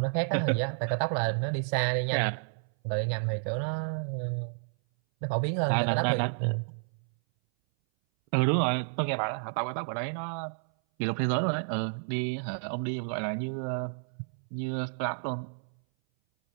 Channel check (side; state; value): left; silent; 57 dB below the other